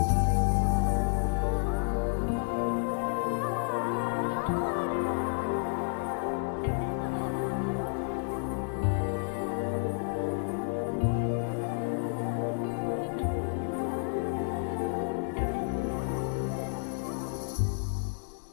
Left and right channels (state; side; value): silent; right; digital silence